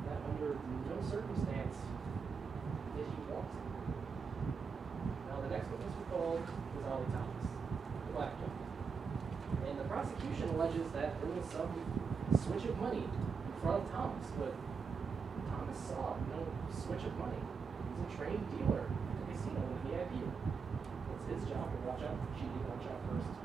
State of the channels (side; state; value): left; quieter; 5.4 dB